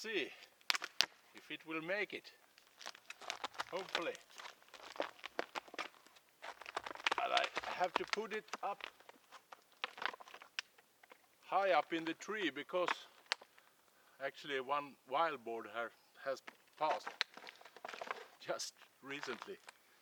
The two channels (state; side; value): identical; both; correlation 1.00